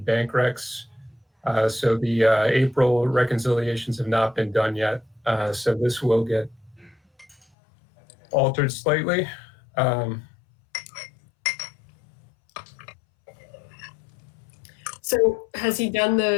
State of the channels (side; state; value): right; drops out; at 7.4 s